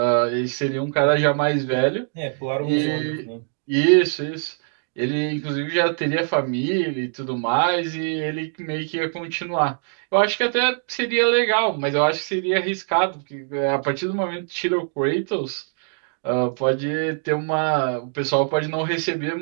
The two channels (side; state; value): left; silent; digital silence